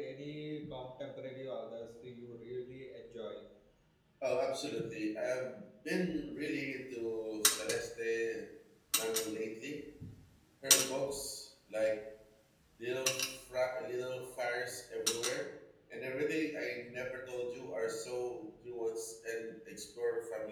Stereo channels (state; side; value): identical; both; correlation 1.00